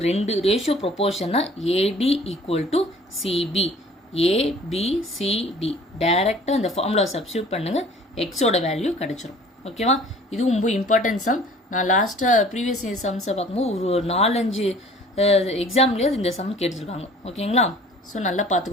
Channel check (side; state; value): both; normal; correlation 0.50